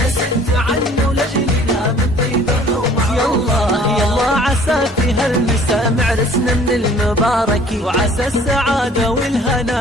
عنه لجلنا من طيبه ومعروفها. يلا عسى في هالمساء معرسنا من المبارك، وعسى السعادة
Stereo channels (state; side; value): normal; both; correlation 0.53